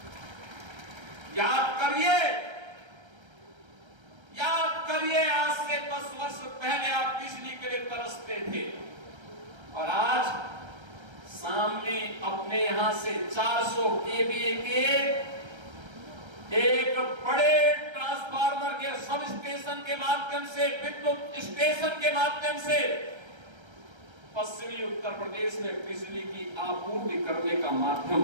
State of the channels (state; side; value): late; left; 1.3 ms